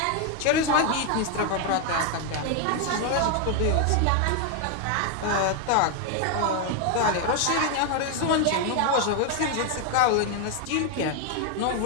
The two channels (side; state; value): both; different; correlation 0.01